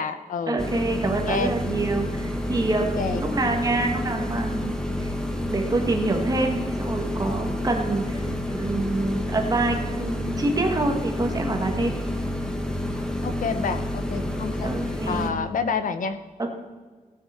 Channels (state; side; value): normal; both; correlation 0.67